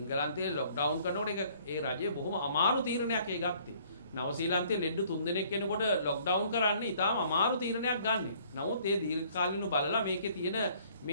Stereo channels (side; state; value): both; inverted; correlation -0.59